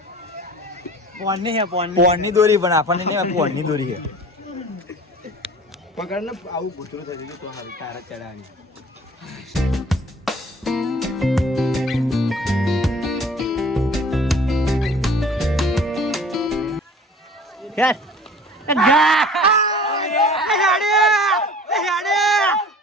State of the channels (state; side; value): normal; both; correlation 0.45